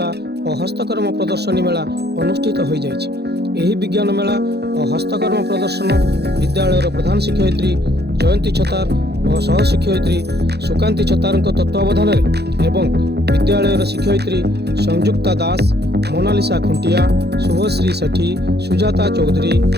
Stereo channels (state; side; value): late; left; 0.48 ms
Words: और हस्तकर्म प्रदर्शनी मेला अनुष्ठित हो जाइछि। एही विज्ञान मेला और हस्तकर्म प्रदर्शन विद्यालय प्रधान शिक्षयित्री जयंती छतार और सहशिक्षयित्री सुकांती छतार तत्वावधान एवं विद्यालय शिक्षयित्री संयुक्ता दास, मोनालिसा खुंटिया, शुभश्री सेठी, सुजाता चौधरी,